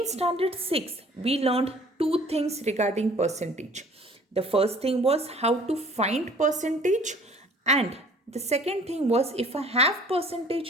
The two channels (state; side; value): normal; both; correlation 0.52